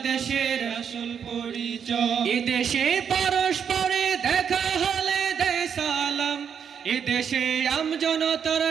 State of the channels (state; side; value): quieter; left; 7.5 dB